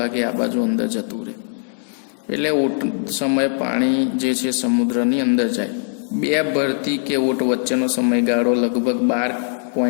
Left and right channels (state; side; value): silent; right; 63 dB below the other